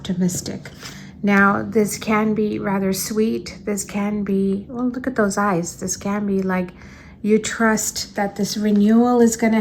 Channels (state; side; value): identical; both; correlation 1.00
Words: Now, this can be rather sweet. This can be, well, look at those eyes. This can be like you trust that this renewal is going